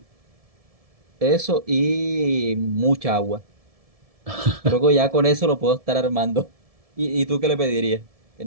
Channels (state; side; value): late; left; 1.7 ms